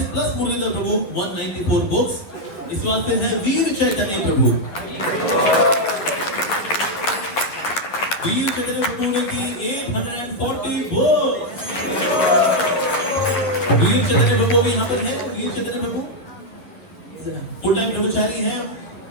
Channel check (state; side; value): late; right; 11 ms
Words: प्लस मुरलीधर प्रभु 194 वोट्स। इसके बाद फिर है वीर चैतन्य प्रभु। वीर चैतन्य प्रभु ने की 840 वोट्स। वीर चैतन्य प्रभु भी यहाँ पर है। वीर चैतन्य प्रभु फुल टाइम ब्रह्मचारी हैं